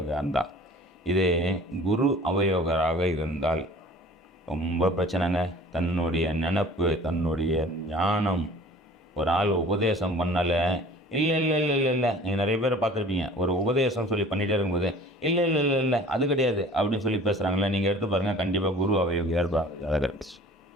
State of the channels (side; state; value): both; normal; correlation 0.47